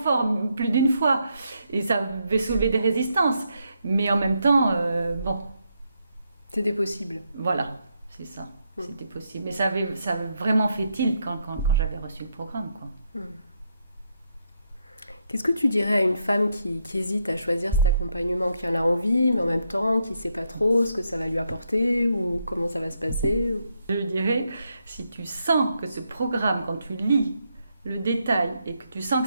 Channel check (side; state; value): both; inverted; correlation -0.78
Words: plus d'une fois. Et ça avait soulevé des résistances. Mais en même temps, bon. C'était possible. Voilà, c'est ça. C'était possible. Mais ça avait vraiment fait tilt quand j'avais reçu le programme, quoi. Qu'est-ce que tu dirais à une femme qui hésite à choisir cet accompagnement, qui en a envie, mais en même temps qui ne sait pas trop ce que ça va lui apporter ou comment ça va se passer? Je lui dirais, si tu sens que ce programme, quand tu lis le détail et que tu sens